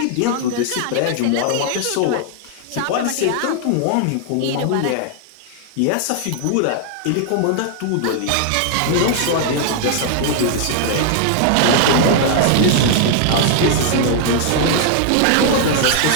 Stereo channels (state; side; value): different; both; correlation 0.00